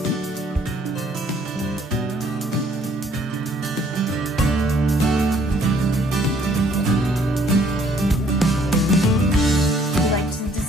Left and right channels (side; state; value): both; normal; correlation 0.62